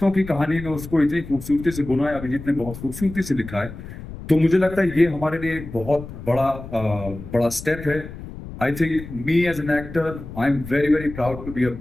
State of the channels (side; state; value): left; noise; rumble, 12 dB below the sound